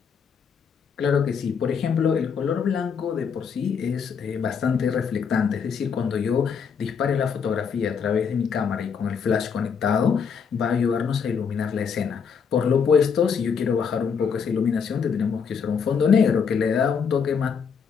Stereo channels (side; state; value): right; quieter; 6.4 dB